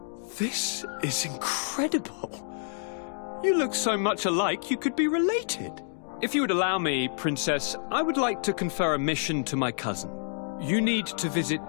This is incredible. You look so much alike you could be related. If you would allow me, Princess, I would like to confer a mission to my cousin. You need to visit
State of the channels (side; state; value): right; silent; digital silence